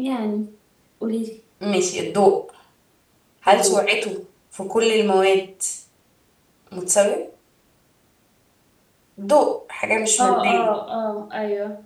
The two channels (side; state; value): both; identical; correlation 1.00